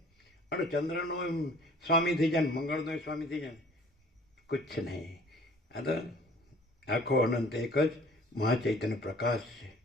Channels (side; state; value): both; normal; correlation 0.52